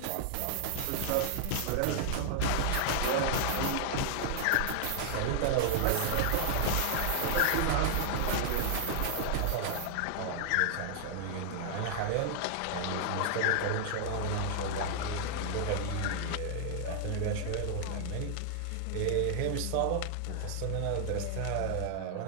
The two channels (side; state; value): both; different; correlation 0.00